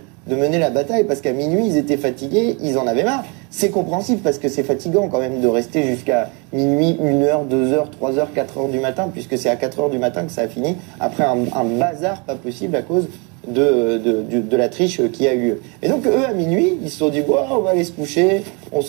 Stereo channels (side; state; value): left; quieter; 32.3 dB